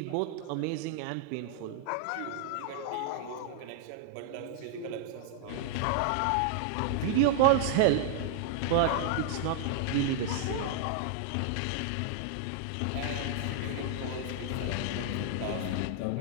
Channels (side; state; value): both; different; correlation -0.01